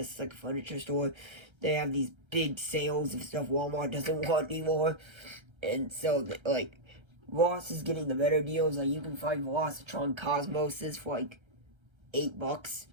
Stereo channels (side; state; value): left; late; 1.3 ms